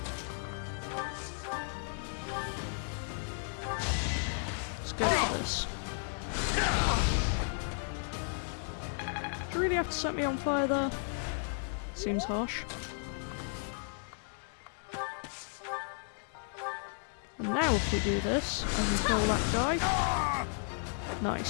Let's go for this. Do you really have to set me on fire there? Seems harsh. And now if we do this, I can kill that guy.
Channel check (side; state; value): right; silent; 55 dB below the other